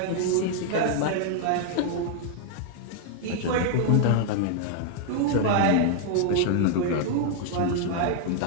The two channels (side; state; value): both; different; correlation 0.00